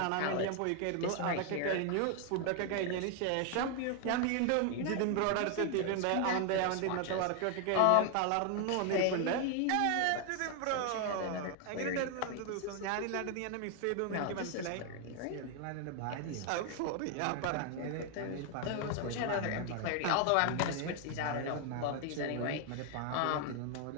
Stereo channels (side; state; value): both; different; correlation 0.00